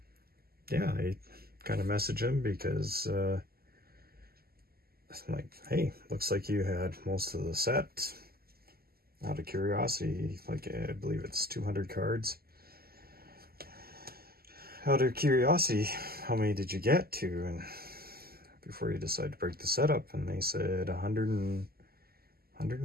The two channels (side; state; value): left; late; 0.45 ms